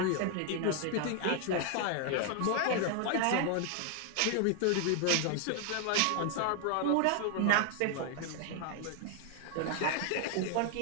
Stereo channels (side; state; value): both; different; correlation 0.00